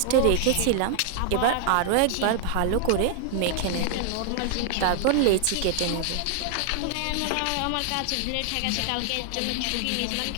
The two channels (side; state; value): both; different; correlation 0.00